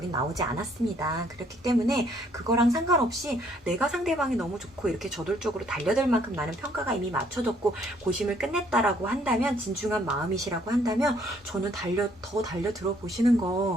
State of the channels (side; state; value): both; normal; correlation 0.65